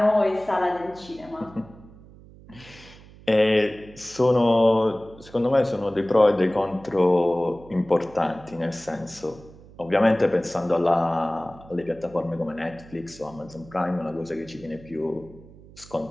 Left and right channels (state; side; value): noise; right; hum, 21 dB below the sound